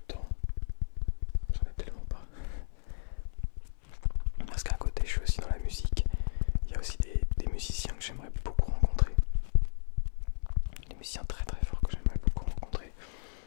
temps, j'en ai tellement pas. Parce qu'à côté je suis aussi dans la musique. Il y a aussi des musiciens que j'aimerais beaucoup rencontrer. Des musiciens très très forts que j'aimerais beaucoup rencontrer.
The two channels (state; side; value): silent; right; 56 dB below the other